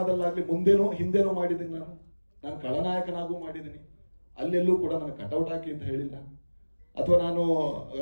ಮುಂದೇನೋ ಹಿಂದೇನೋ ಮಾಡಿದ್ದೀನಿ. ನಾನು ಖಳನಾಯಕನಾಗೂ ಮಾಡಿದ್ದೀನಿ. ಅಲ್ಲೆಲ್ಲೂ ಕೂಡ ನನಗೆ ಕಟೌಟ್ ಹಾಕಿ ಅಂತ ಹೇಳಿಲ್ಲ. ಅಥವಾ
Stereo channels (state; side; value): inverted; both; correlation -1.00